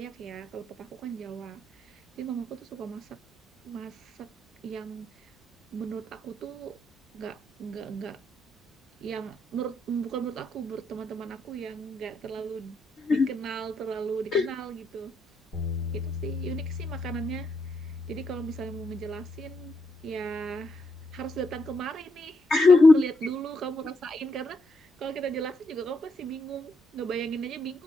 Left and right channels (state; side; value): normal; both; correlation 0.78